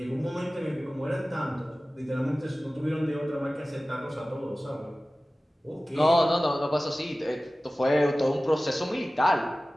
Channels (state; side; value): normal; both; correlation 0.97